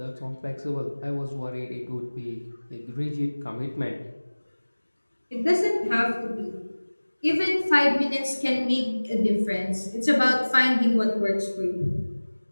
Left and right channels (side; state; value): both; inverted; correlation -1.00